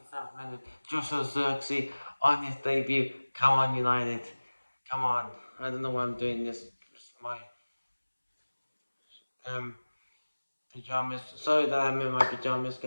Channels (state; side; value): inverted; both; correlation -1.00